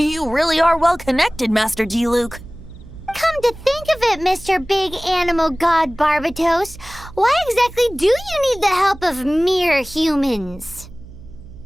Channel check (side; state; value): right; noise; hum, 18 dB below the sound